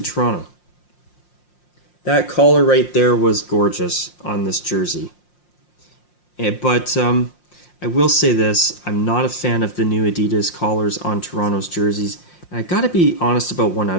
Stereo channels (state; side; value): late; right; 5.7 ms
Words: Toronto. That collar right there was gorgeous on this jersey. But I will say this, I'm not a fan of the new Adidas collars on Toronto's jerseys. And I gotta be honest about one